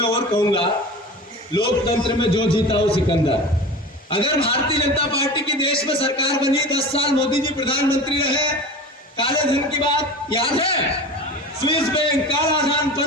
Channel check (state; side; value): normal; both; correlation 0.33